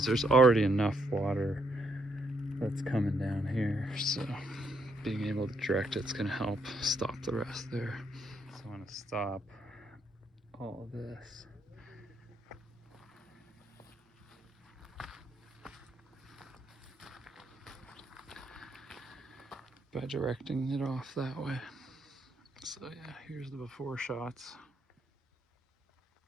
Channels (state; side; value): normal; both; correlation 0.74